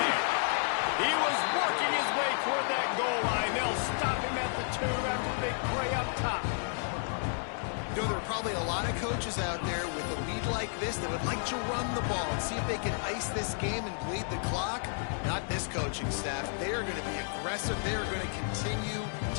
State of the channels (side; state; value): right; silent; 57 dB below the other